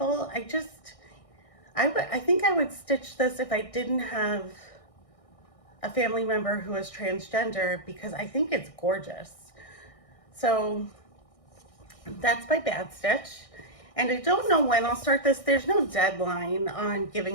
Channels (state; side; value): late; right; 1.6 ms